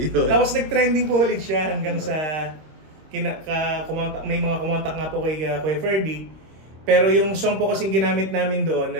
Tapos nag-trending po ulit siya hanggang sa may mga kumontak nga po kay Kuya Ferdy. Pero yung song po kasing ginamit namin doon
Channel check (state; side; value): late; left; 26 ms